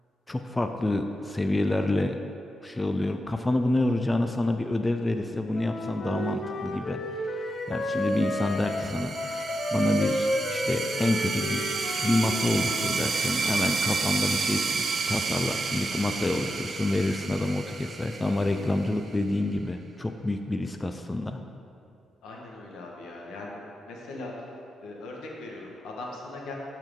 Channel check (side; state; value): both; normal; correlation 0.88